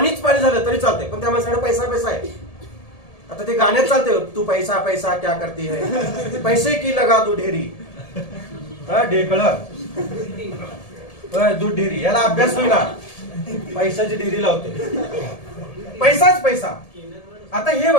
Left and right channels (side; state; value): right; late; 1.7 ms